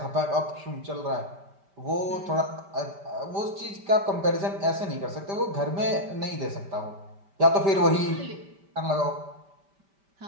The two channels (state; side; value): late; left; 5.1 ms